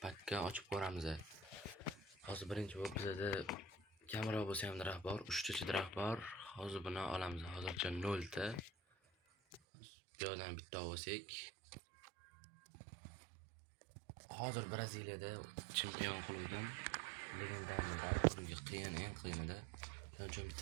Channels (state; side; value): drops out; left; at 9.6 s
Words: pakka ochib ko'ramiz. Hozir birinchi bo'lib bizda kamera bo'lsa ham daraxt bor, 3 ta daraxt bor. Hozir buni olamiz. Hozircha 0 ta. Bu yerdan bitta olsak. Hozir Braziliyada chempion klubdan legendarniy oxirgi eng qiyinida. Shuning uchun